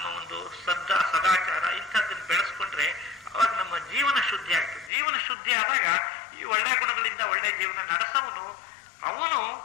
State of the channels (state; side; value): drops out; right; at 4.9 s